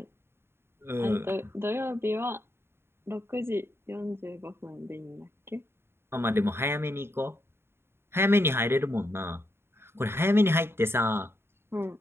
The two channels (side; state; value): left; late; 0.12 ms